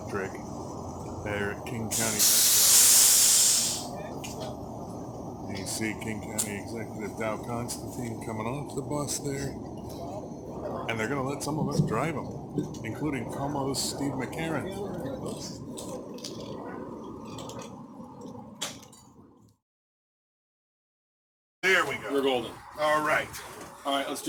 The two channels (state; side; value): identical; both; correlation 1.00